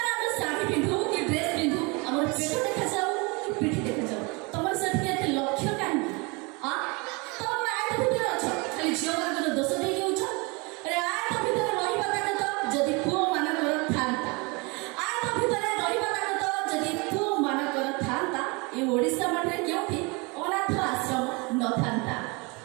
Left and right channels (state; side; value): quieter; left; 28.6 dB